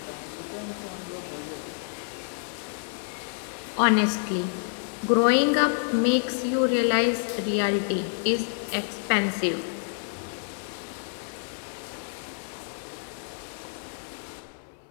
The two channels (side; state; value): right; silent; digital silence